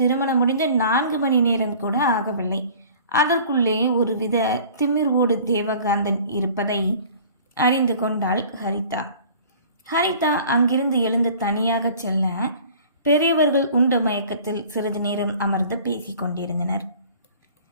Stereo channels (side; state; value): both; inverted; correlation -0.48